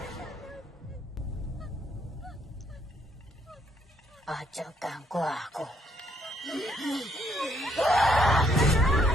Ojo ganggu aku.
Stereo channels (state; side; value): normal; both; correlation 0.70